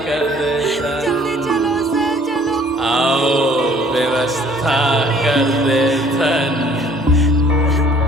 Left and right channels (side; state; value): both; normal; correlation 0.56